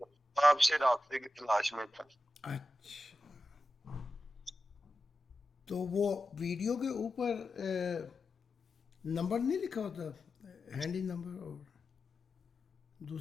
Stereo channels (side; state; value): both; normal; correlation 0.92